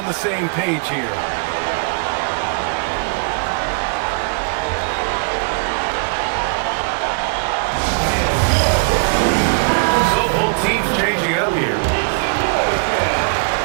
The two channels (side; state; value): left; quieter; 38.6 dB